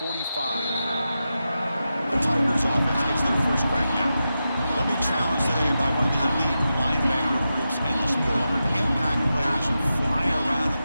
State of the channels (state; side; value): inverted; both; correlation -0.90